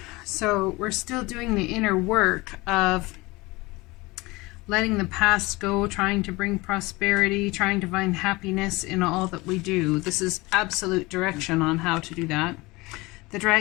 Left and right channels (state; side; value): quieter; right; 22.7 dB